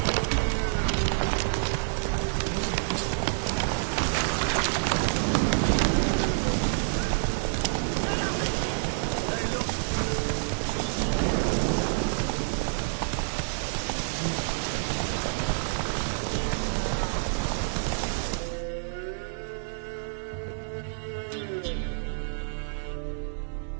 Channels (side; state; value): left; silent; digital silence